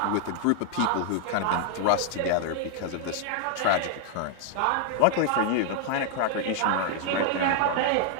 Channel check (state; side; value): different; both; correlation 0.00